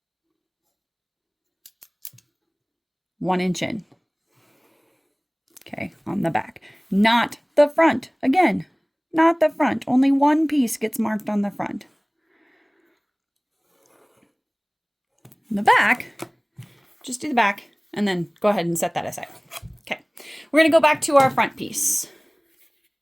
one inch in. Okay, on the back, not the front. Again, not the front. Only one piece gets marked on the front. The back, just do the back and then go ahead and set that aside. Okay, we're going to go back to our front piece.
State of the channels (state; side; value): identical; both; correlation 1.00